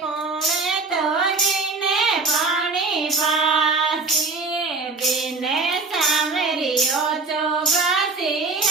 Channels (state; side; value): quieter; left; 4.0 dB